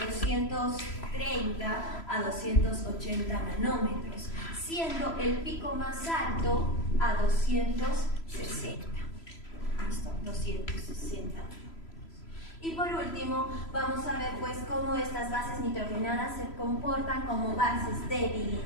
a 280 nanómetros, siendo el pico más alto a 260. ¿Listo? 260. Y por último, vamos a ver pues cómo estas bases nitrogenadas se comportan como bases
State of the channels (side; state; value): right; late; 3.0 ms